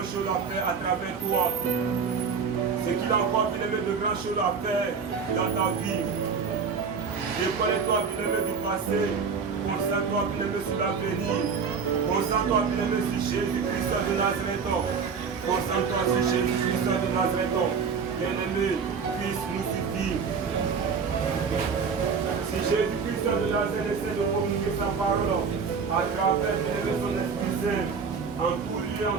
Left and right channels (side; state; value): left; quieter; 5.7 dB